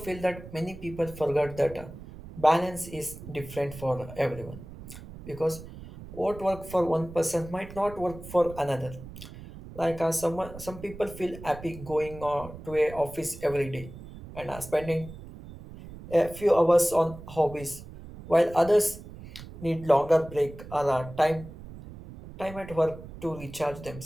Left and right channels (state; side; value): noise; right; rumble, 15 dB below the sound